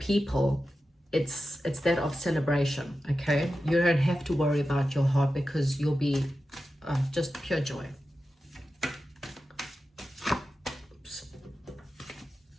it's that of celebration, okay? You don't have to worry about your heart because you'll be just pure joy. Oops.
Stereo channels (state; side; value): normal; both; correlation 0.92